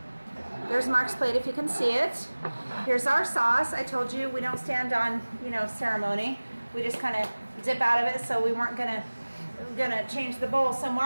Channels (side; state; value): both; inverted; correlation -1.00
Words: There's Mark's plate if you can see it. Here's our sauce. I told you we don't stand on, you know, ceremony. We just kind of dip out of it, so we weren't gonna change the bowl. So